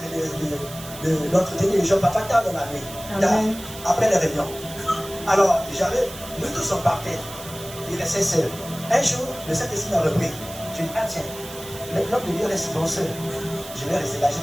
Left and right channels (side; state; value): right; noise; hiss, 14 dB below the sound